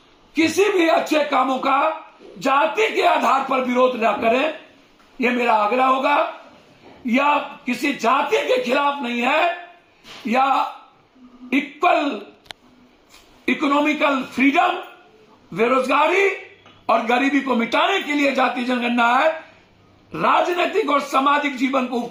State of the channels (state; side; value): identical; both; correlation 1.00